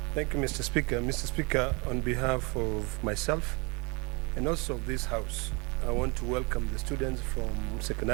Thank you, Mr. Speaker. Mr. Speaker, on behalf of myself and also of this House, I want to welcome the students from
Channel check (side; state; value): left; quieter; 29.6 dB